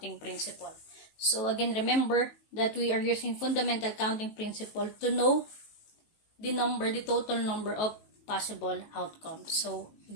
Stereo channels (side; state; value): right; late; 19 ms